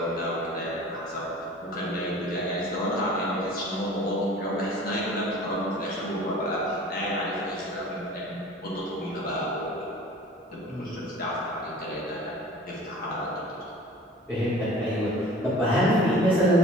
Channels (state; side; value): normal; both; correlation 0.44